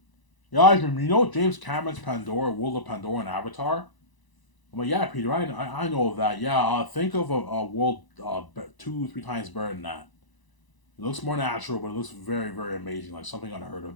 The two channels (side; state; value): right; late; 1.0 ms